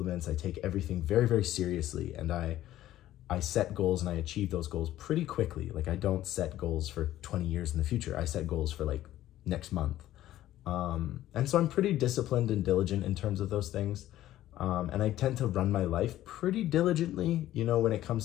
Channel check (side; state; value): right; quieter; 13.8 dB